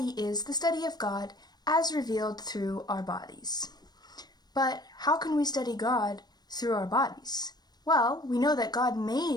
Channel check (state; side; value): late; right; 0.19 ms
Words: is the study of God as revealed through our bodies. But how can we study God through our bodies? Well, we know that God